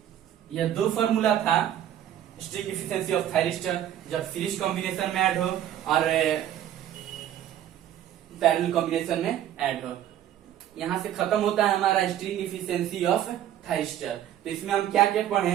यह दो फॉर्मूला था स्ट्रिंग इफिशियंसी ऑफ थायरिस्टर जब सीरीज कॉम्बिनेशन में ऐड हो और पैरेलल कॉम्बिनेशन में ऐड हो। यहां से खत्म होता है हमारा स्ट्रिंग इफिशियंसी ऑफ थायरिस्टर। तो इसमें हम क्या क्या पढ़े,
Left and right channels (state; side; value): quieter; left; 11.4 dB